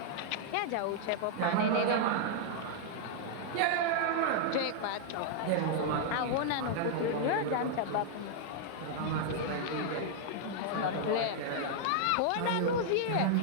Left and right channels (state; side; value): different; both; correlation -0.01